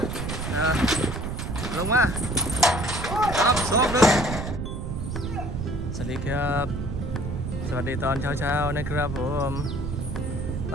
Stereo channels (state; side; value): noise; right; rumble, 4 dB below the sound